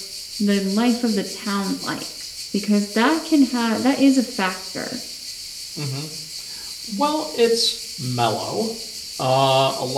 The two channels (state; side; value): identical; both; correlation 1.00